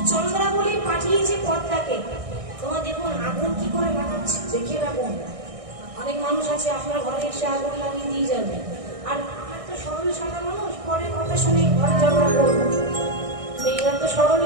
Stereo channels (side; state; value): left; late; 1.6 ms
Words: চন্দ্রাবলী পাঠিয়েছে পদ্মাকে, তোমার দেখুন আগুন কি করে লাগাচ্ছে দেখে রাখুন। অনেক মানুষ আছে আপনার ঘরে এসে আগুন লাগিয়ে দিয়ে যাবে, আর আমার তো সরল সাদা মানুষ, পরে কথা শুনে ঘরে ঝগড়া করবো। মেয়েরা তো